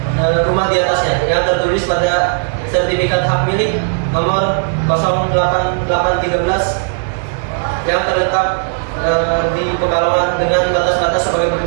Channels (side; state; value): left; silent; digital silence